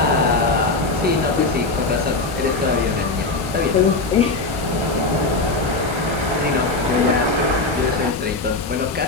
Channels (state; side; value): quieter; right; 3.5 dB